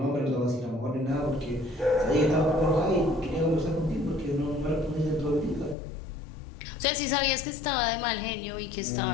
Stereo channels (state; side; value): drops out; right; at 5.8 s